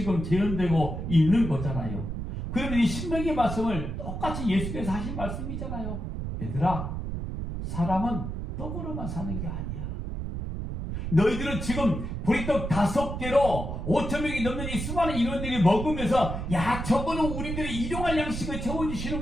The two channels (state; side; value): noise; right; rumble, 5 dB below the sound